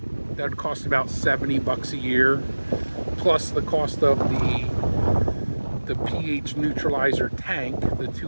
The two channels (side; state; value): both; inverted; correlation -1.00